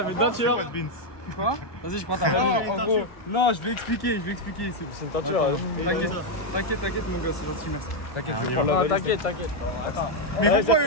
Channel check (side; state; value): right; late; 1.6 ms